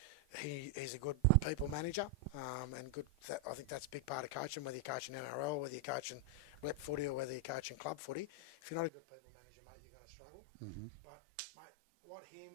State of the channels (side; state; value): left; drops out; at 8.9 s